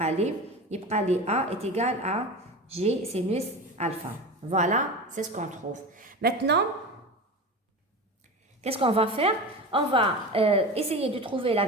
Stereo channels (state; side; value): normal; both; correlation 0.28